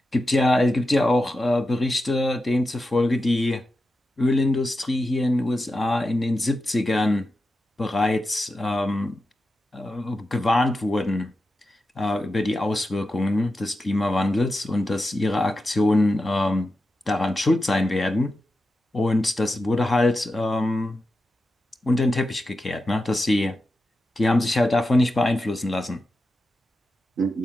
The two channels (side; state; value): both; normal; correlation 0.90